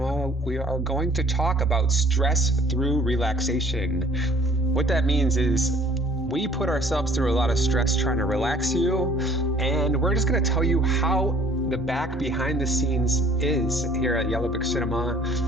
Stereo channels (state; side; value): normal; both; correlation 0.55